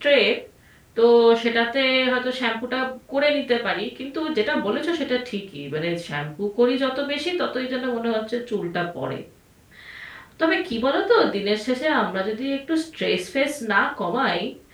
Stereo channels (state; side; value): identical; both; correlation 1.00